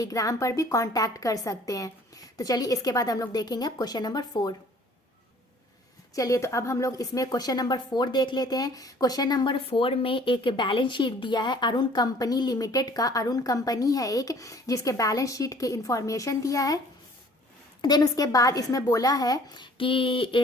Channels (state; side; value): normal; both; correlation 0.54